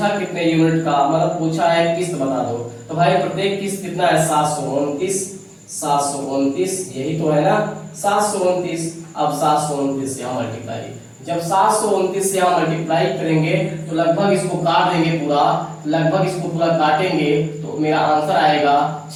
कितने यूनिट का, मतलब पूछा है किस्त बता दो, तो भाई प्रत्येक किस्त कितना है? 729, 729, यही तो है ना, 729। अब 729 से यहाँ मल्टीप्लाई, जब 729 से यहाँ मल्टीप्लाई करेंगे तो लगभग इसको काट देंगे पूरा, लगभग इसको पूरा काटेंगे तो मेरा आंसर आएगा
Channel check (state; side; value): identical; both; correlation 1.00